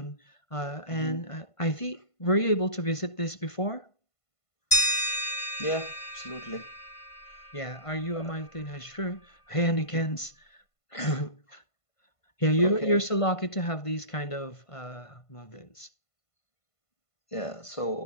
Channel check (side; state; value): right; late; 1.5 ms